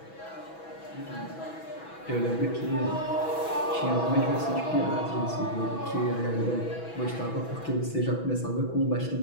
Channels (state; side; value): late; right; 6.1 ms